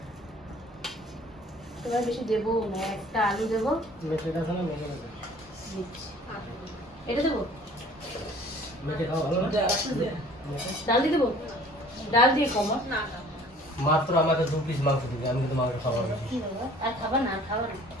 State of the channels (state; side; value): normal; both; correlation 0.51